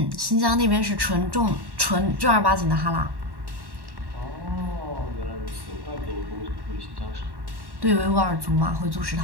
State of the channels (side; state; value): left; late; 1.1 ms